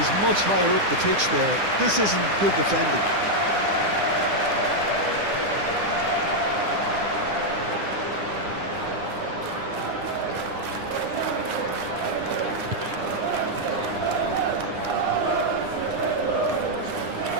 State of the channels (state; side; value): late; left; 9.9 ms